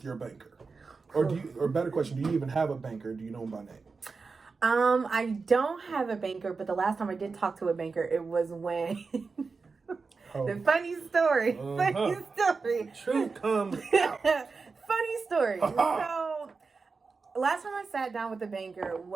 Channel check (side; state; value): left; quieter; 4.5 dB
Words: your banker? Or better question, do you even have a banker? Do you know him by name? I don't have a banker, but the last time I did talk to a banker, it was when the funny story. Truth comes out. Funny story. So last time I sat down with the banker